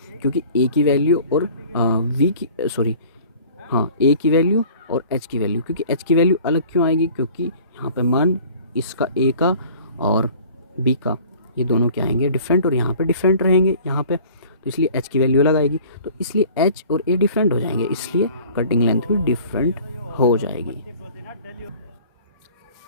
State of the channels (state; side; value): inverted; both; correlation -0.48